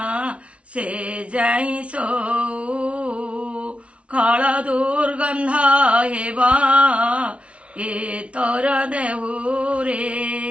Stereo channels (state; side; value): late; left; 0.061 ms